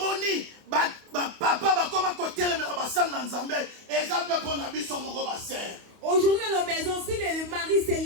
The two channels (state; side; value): late; left; 28 ms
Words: Aujourd'hui dans nos maisons, si les maris